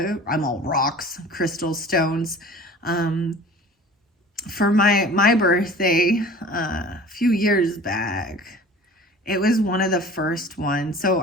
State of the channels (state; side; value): normal; both; correlation 0.44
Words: all rocks, crystal stones. For my birthday, a few years back, it was one of the first ones. So